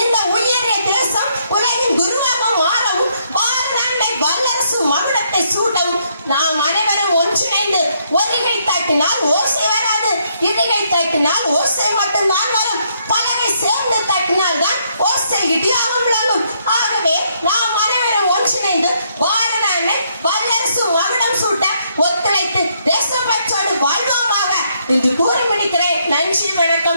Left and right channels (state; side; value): inverted; both; correlation -0.72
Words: இந்த உயரிய தேசம் உலகின் குருவாக மாறவும் பாரநாட்டை வல்லரசு மகுடத்தை சூட்டவும் நாம் அனைவரும் ஒன்றிணைந்து ஒருகை தட்டினால் ஓசை வராது, இருகை தட்டினால் ஓசை மட்டும்தான் வரும், பலகை சேர்ந்து தட்டினால் தான் ஓசை இடியாக விளங்கும். ஆகவே நாம் அனைவரும் ஒன்றிணைந்து பாரநாட்டை வல்லரசு மகுடம் சூட்ட ஒத்துழைத்து தேசப்பற்றோடு வாழ்வோமாக என்று கூறி முடிக்கிறேன். நன்றி,